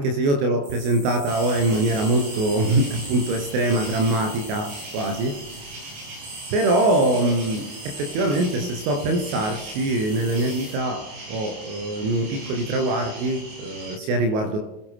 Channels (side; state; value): left; late; 28 ms